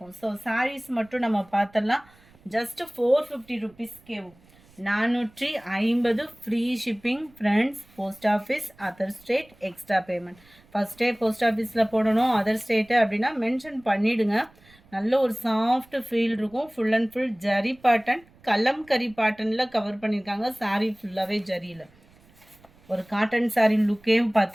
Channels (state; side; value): noise; right; rumble, 28 dB below the sound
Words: ஸோ சாரீஸ் மட்டும் நம்ம பார்த்துடலாம். ஜஸ்ட்டு 450 ருபீஸ் கேவும். 450 free shipping. Friends, post office, other state, extra payment. ஃபஸ்ட்டே போஸ்ட் ஆஃபீஸில் போடணும் அதர் ஸ்டேட்டு அப்படின்னா மென்ஷன் பண்ணிவிடுங்க. நல்ல ஒரு சாஃப்ட் ஃபீல் இருக்கும். Full and full zari pattern, kalamkari பேட்டர்னில் கவர் பண்ணியிருக்காங்க. சாரீ ஃபுல்லாகவே ஜரியில். ஒரு காட்டன் சாரீ லுக்கே